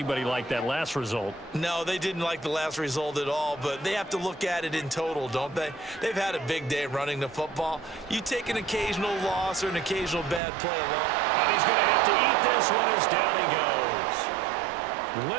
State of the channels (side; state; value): left; drops out; at 10.4 s